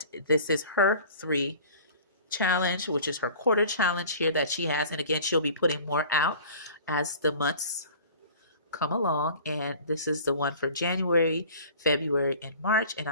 this is her 3 challenge, which is her quarter challenge here that she has. And again, she'll be putting more out as the months come along. And this is the one for January, February, and March. And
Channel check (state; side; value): inverted; both; correlation -0.44